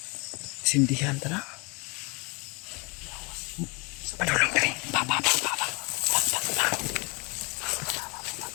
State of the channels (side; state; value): right; quieter; 30.0 dB